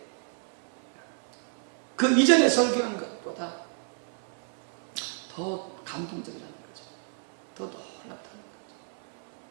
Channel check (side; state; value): left; silent; 57 dB below the other